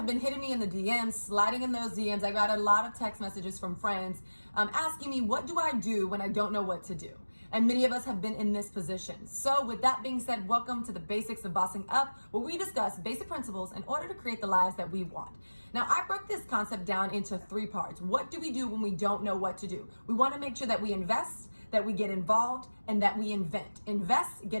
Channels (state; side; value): inverted; both; correlation -1.00